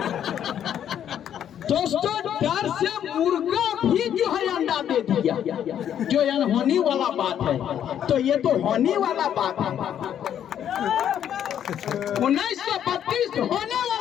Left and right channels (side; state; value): right; quieter; 9.8 dB